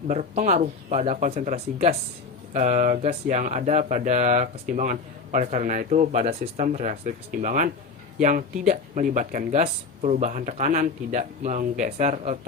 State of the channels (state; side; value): quieter; right; 4.4 dB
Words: berpengaruh pada konsentrasi gas yang ada pada kesetimbangan. Oleh karena itu, pada sistem reaksi kesetimbangan yang tidak melibatkan gas, perubahan tekanan tidak menggeser